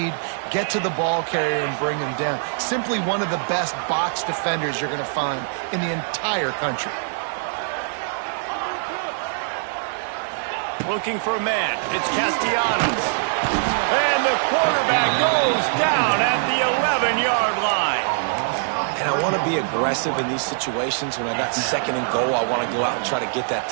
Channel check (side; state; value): left; silent; digital silence